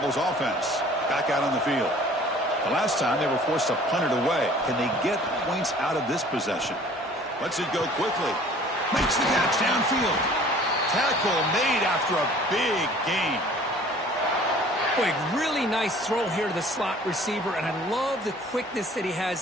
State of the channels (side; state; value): both; normal; correlation 0.51